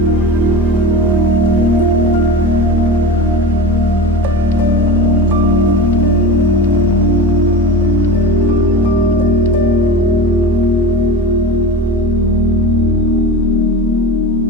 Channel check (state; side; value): normal; both; correlation 0.30